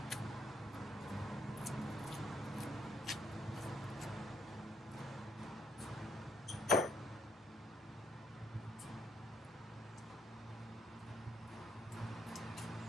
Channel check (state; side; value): normal; both; correlation 0.70